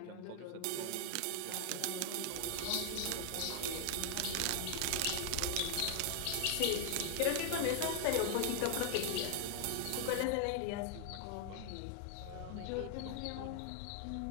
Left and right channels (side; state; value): both; different; correlation 0.00